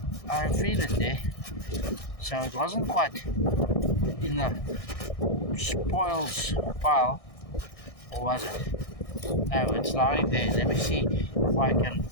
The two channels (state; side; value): late; right; 1.6 ms